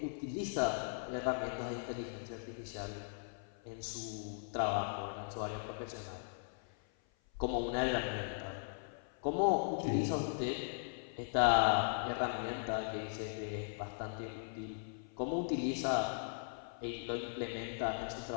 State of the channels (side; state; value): right; silent; 52 dB below the other